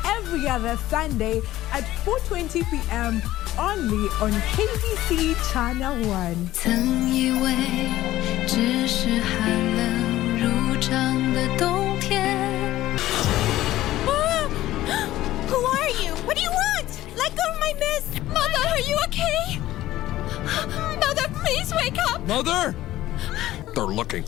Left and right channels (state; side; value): quieter; right; 15.1 dB